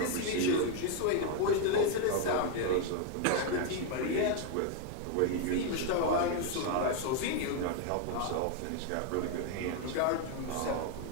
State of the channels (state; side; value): different; both; correlation 0.01